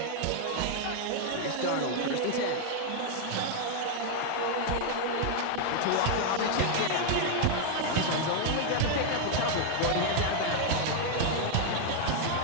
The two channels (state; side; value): different; both; correlation 0.00